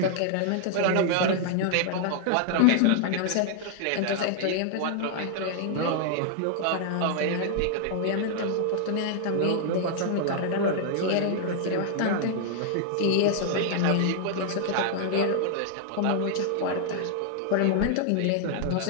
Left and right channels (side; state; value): both; different; correlation 0.00